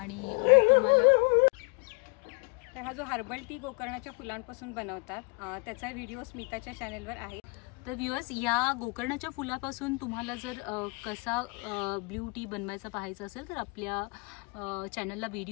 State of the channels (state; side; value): quieter; right; 31.0 dB